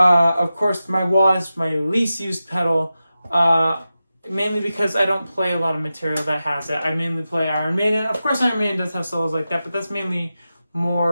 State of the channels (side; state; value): both; inverted; correlation -0.92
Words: course, my wah is my least used pedal. Mainly because I don't play a lot of material that has it. I mainly play Iron Maiden. Of course, Iron Maiden does have solos like that, but that's mainly